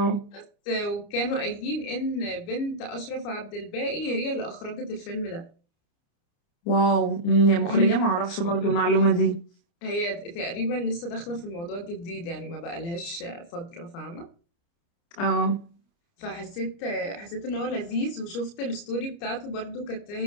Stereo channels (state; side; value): late; right; 29 ms